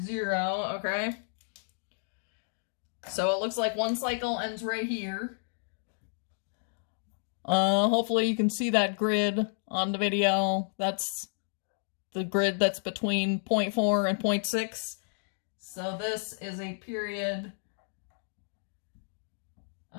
okay. So it looks like one cycle ends right here. Hopefully you can see that grid on the video. That's the grid that's between 0.4 and 0.6. So this is a period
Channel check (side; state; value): right; silent; digital silence